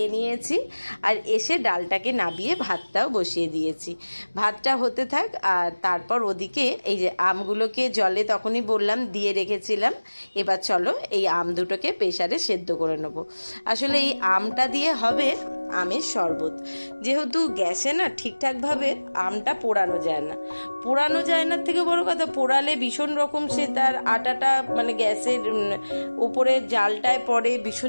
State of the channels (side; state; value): both; inverted; correlation -1.00